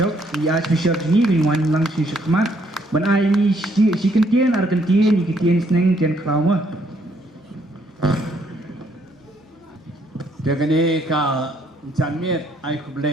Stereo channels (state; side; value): normal; both; correlation 0.69